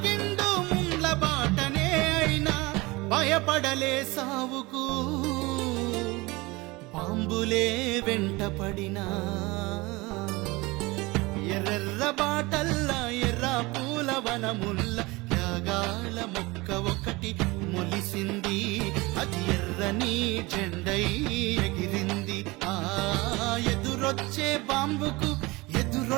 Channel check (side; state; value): left; quieter; 23.0 dB